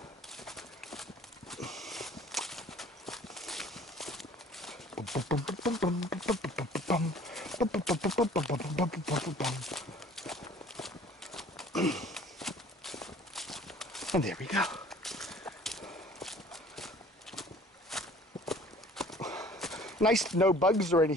And there we go. Nice, no bugs or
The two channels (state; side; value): normal; both; correlation 0.51